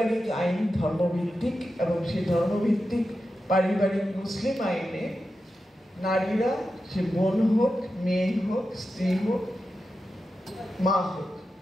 আইন ধর্মভিত্তিক এবং সেই ধর্মভিত্তিক পারিবারিক মুসলিম আইনে নারীরা, সে বোন হোক, মেয়ে হোক, স্ত্রী হোক, মা হোক,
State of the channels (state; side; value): normal; both; correlation 0.90